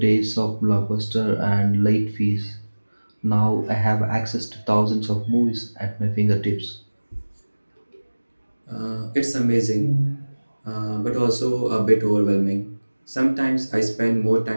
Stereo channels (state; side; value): inverted; both; correlation -1.00